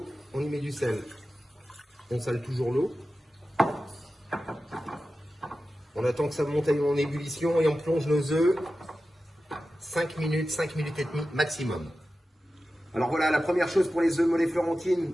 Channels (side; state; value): both; normal; correlation 0.93